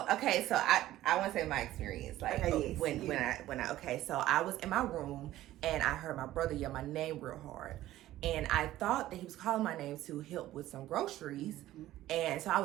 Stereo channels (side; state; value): left; quieter; 14.6 dB